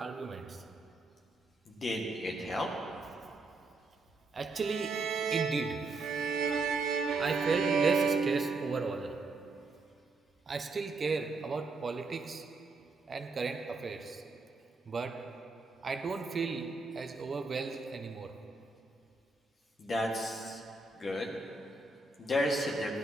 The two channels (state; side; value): quieter; left; 3.4 dB